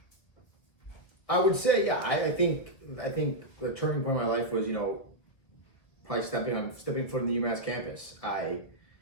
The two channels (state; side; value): late; right; 1.9 ms